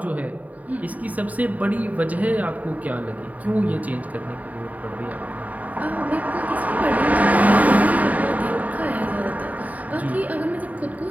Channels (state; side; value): late; left; 0.073 ms